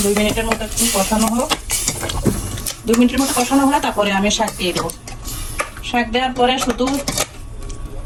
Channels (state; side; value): identical; both; correlation 1.00